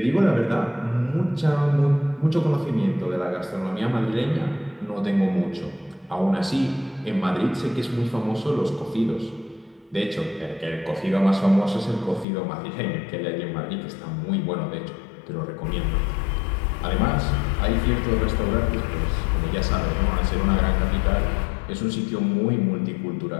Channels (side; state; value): right; drops out; at 12.2 s